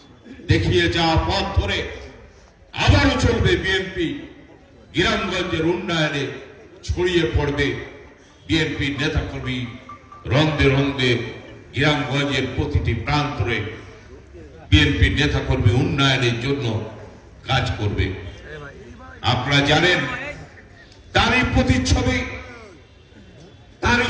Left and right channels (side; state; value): both; identical; correlation 1.00